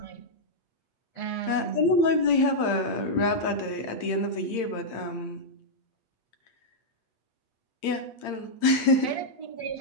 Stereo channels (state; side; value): late; right; 8.8 ms